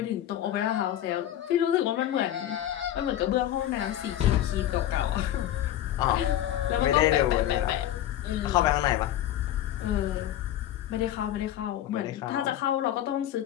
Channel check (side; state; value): right; quieter; 12.2 dB